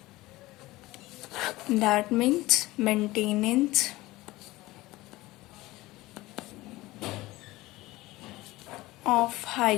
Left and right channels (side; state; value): right; quieter; 19.0 dB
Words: That means maintenance of